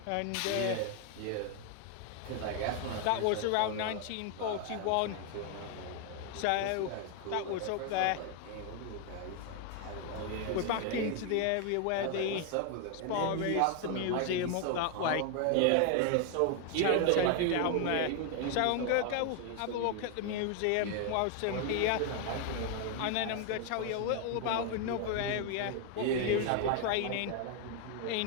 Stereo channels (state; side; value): different; both; correlation 0.01